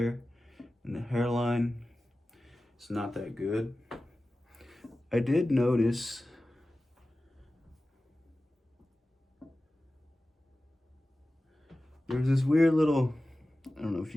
and the hairline is not that good. I did notice there's this weird little, I don't know if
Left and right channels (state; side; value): normal; both; correlation 0.96